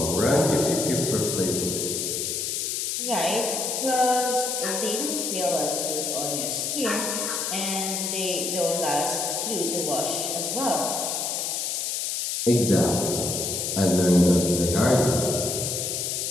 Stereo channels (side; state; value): left; noise; hiss, 1 dB below the sound